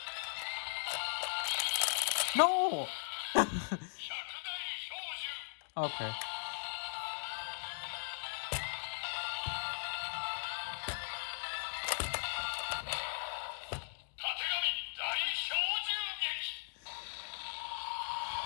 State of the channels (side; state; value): right; silent; digital silence